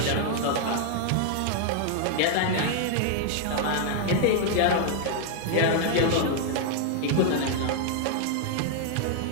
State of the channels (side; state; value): both; different; correlation 0.00